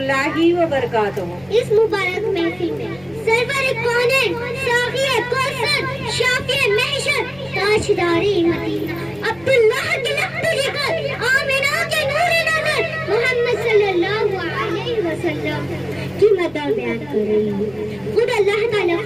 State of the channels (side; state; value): left; noise; rumble, 25 dB below the sound